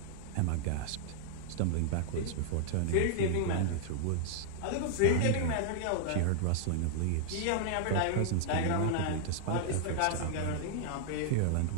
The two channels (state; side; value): different; both; correlation -0.01